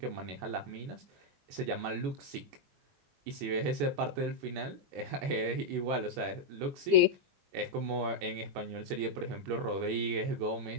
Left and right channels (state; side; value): late; left; 21 ms